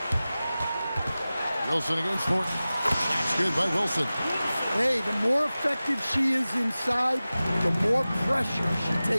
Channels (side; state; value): both; inverted; correlation -0.97